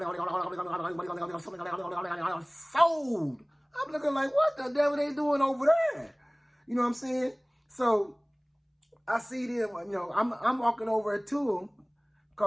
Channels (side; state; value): both; identical; correlation 1.00